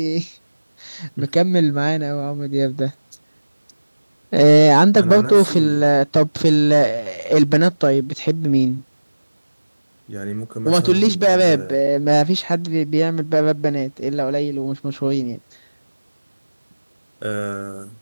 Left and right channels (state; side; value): inverted; both; correlation -1.00